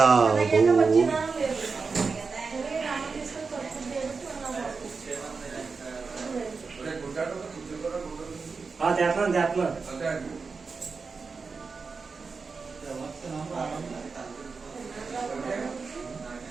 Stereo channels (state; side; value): quieter; left; 4.7 dB